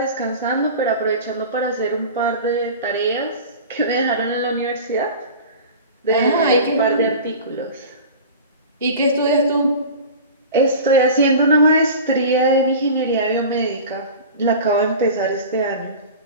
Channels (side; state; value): both; inverted; correlation -0.35